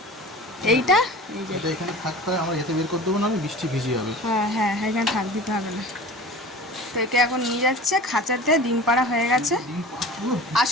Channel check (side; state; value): both; normal; correlation 0.38